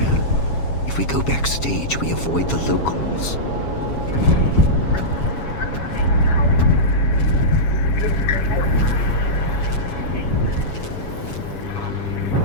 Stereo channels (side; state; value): right; late; 7.2 ms